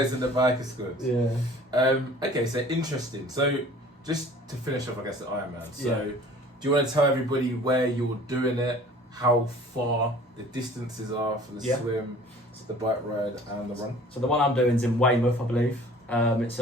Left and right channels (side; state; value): both; normal; correlation 0.48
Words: in the biker squad. Yeah. Okay, so interesting. So just to finish off, I guess, the Ironman. So Yeah. do you want to tell everybody where you're doing it, how far the distances are for the Yeah. swim, the bike ride, and the run? So the one I'm doing is in Weymouth, I believe. It's